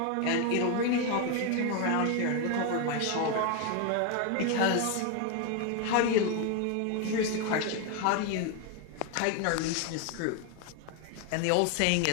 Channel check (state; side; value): different; both; correlation 0.01